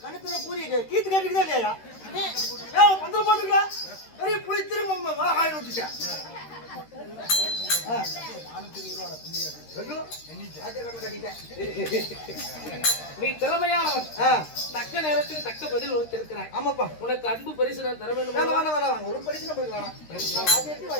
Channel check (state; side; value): late; right; 13 ms